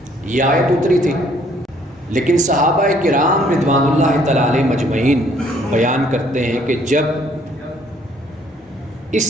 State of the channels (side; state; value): both; normal; correlation 0.63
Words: یہ آیت اتری تھی، لیکن صحابہ کرام رضوان اللہ تعالی علیہ مجمعین بیان کرتے ہیں کہ جب اس